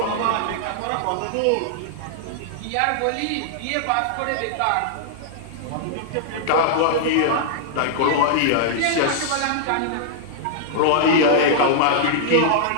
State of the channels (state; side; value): different; both; correlation -0.01